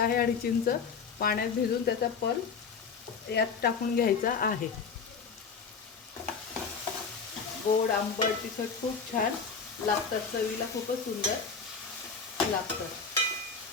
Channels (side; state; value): right; quieter; 5.5 dB